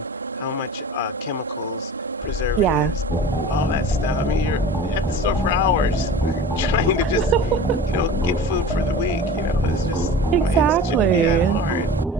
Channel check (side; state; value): both; normal; correlation 0.37